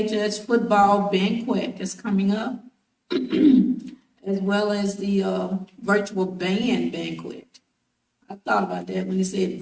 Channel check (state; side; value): identical; both; correlation 1.00